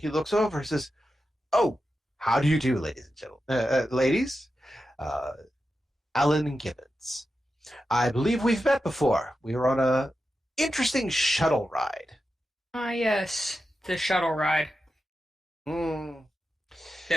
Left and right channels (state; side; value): normal; both; correlation 0.90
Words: looks over and says, "Oh, how do you do, ladies and gentlemen? Ladies? Alan Gibbons. I believe we've met before. We were on a interesting shuttle ride. Ah, yes, the shuttle ride Hmm.